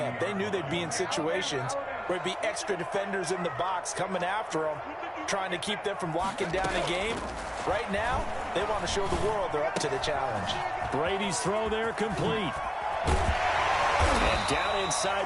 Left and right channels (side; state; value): both; identical; correlation 1.00